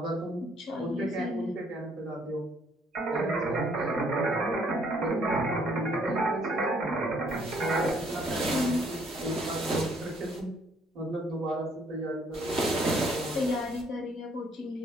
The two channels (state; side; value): normal; both; correlation 0.65